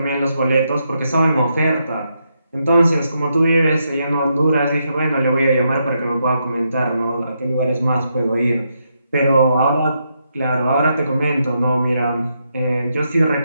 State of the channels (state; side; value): inverted; both; correlation -0.80